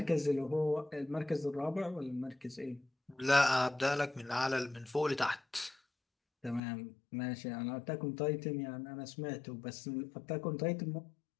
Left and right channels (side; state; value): right; drops out; at 6.6 s